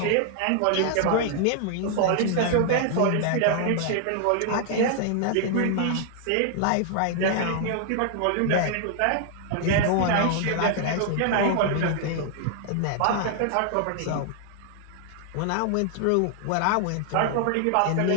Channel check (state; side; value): different; both; correlation 0.00